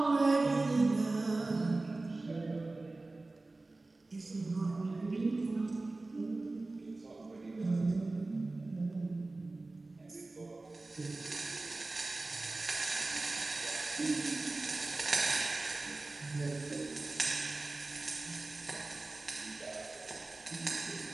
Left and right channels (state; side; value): quieter; left; 3.2 dB